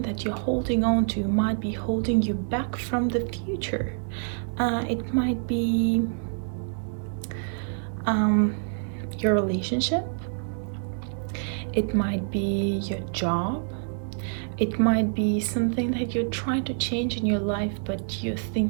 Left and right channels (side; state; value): left; silent; digital silence